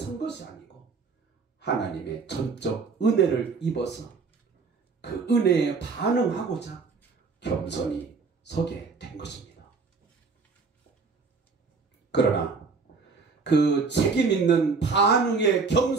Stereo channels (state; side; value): quieter; left; 4.7 dB